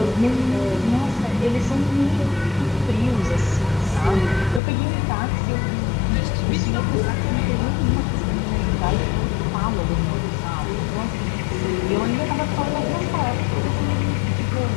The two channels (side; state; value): right; drops out; at 4.6 s